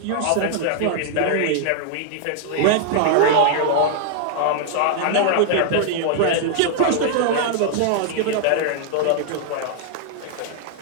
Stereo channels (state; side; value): different; both; correlation -0.01